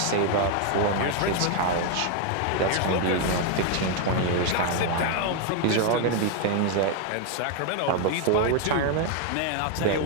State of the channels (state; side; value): different; both; correlation 0.01